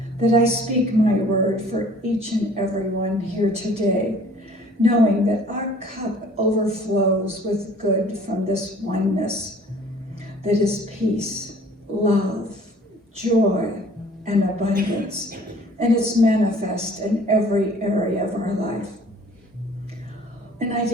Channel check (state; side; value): normal; both; correlation 0.52